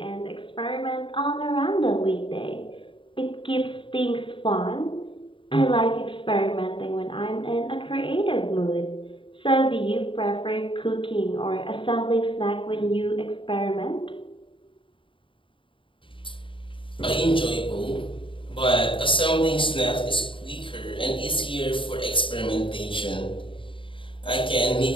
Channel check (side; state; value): right; late; 0.25 ms